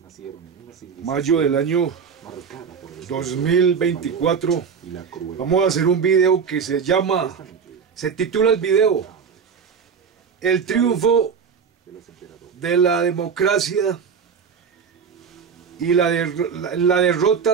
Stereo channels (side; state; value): left; quieter; 6.4 dB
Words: mayo del año 2024. Vamos a hacer un video que se titula el video El triunfo de la democracia y la derrota